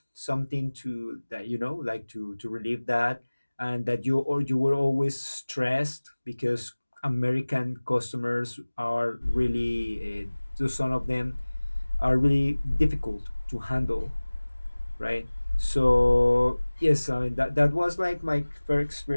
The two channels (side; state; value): both; inverted; correlation -1.00